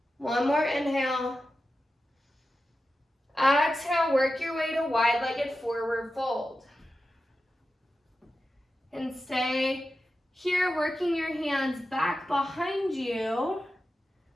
One more inhale. Exhale, work your way to wide-legged forward fold. And stay here, working your hands back behind you.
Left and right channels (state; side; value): normal; both; correlation 0.92